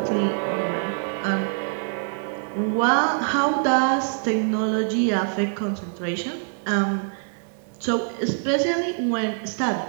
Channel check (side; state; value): left; silent; digital silence